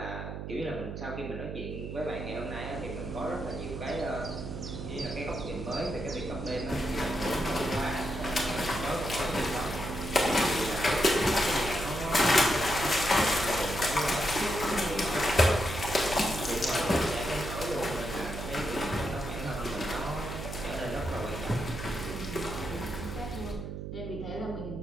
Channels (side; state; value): right; noise; hum, 6 dB below the sound